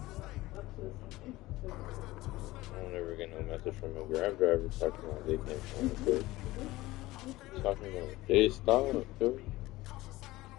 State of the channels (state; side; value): quieter; right; 18.5 dB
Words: I don't ever get no message from a Grab driver talking about they can't find the food. Talking about, hey, stop, dude.